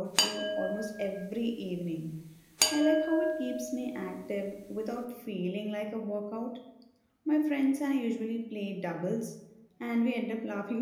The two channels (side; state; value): both; identical; correlation 1.00